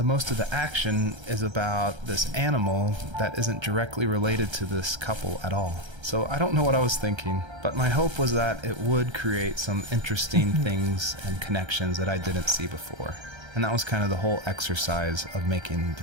most of the action is about this animal that isn't directly related to this couple at all. So I don't know what I was thinking, but my hope was that it would create some interesting things and connections that I didn't see before. And that was kind of the whole exercise of making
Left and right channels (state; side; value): late; left; 1.3 ms